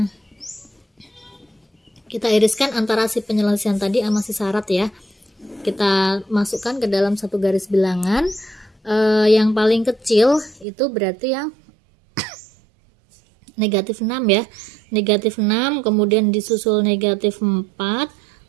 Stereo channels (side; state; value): left; drops out; at 10.7 s